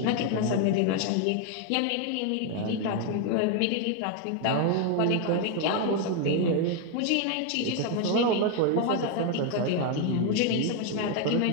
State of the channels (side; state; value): both; different; correlation 0.01